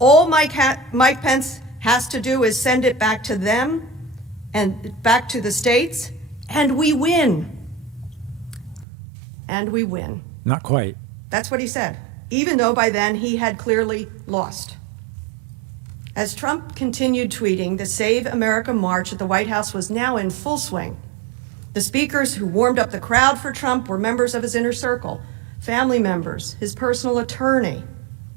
Mike Pence has to do is send it back to them and back to the states, and we win." And we win. Not quite. That's what he said, even though by then he had clearly lost. As Trump continued tweeting, the Save America March at the White House was now in full swing. The speakers who warmed up the crowd for Trump were members of his inner circle, family members, his personal attorney,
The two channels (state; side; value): drops out; left; at 8.8 s